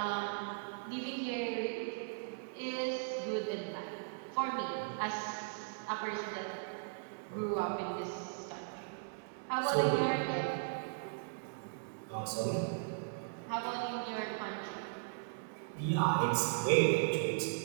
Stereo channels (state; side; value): silent; left; digital silence